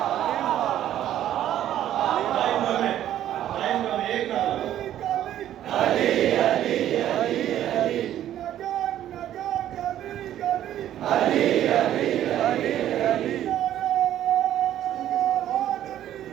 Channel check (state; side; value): quieter; left; 11.9 dB